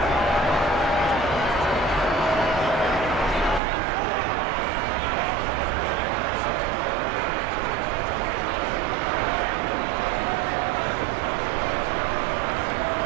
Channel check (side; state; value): left; drops out; at 3.6 s